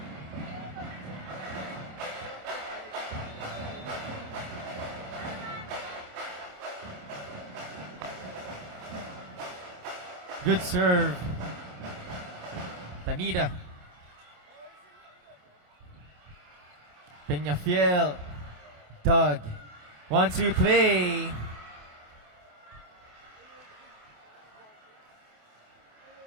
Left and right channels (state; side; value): late; left; 26 ms